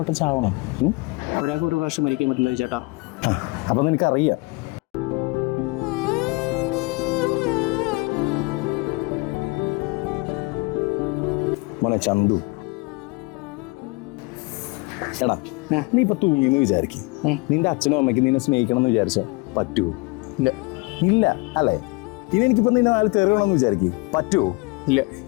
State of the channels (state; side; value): quieter; right; 26.6 dB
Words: ചാവണം? ഒരാൾക്ക് ഒരു പ്രാവശ്യം മരിക്കാൻ പറ്റില്ല ചേട്ടാ. അപ്പം നിനക്കറിയാം. മോനെ ചന്തു, എടാ നീ ഇപ്പൊ തൂങ്ങിന്ന് വിചാരിക്കും, നിന്റെ അച്ഛനും അമ്മയ്ക്ക് നിന്നെ സ്നേഹിക്കണം എന്ന് വിചാരിച്ച പറ്റുമോ? ഇല്ല. ഇല്ല അല്ലേ? ഇനി എനിക്കിപ്പോ നിന്നെ നാളെ തെറിയണമെന്ന് വിചാരിക്കും, പറ്റുമോ? ഇല്ല.